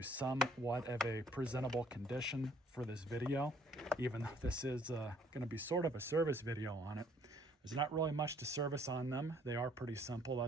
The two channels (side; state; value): both; normal; correlation 0.61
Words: somewhat of a presentable condition for this video, even though this is going to be sort of a service video on it. There's not really much to service on them. They are pretty simple.